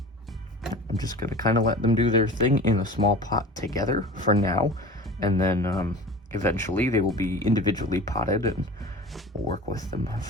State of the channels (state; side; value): normal; both; correlation 0.37